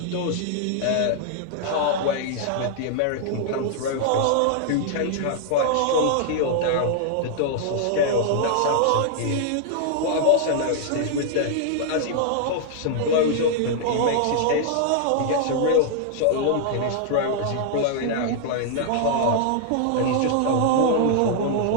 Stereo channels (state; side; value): different; both; correlation -0.01